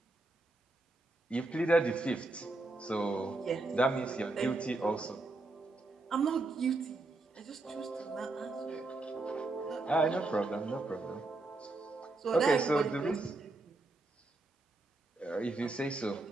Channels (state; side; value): quieter; left; 3.1 dB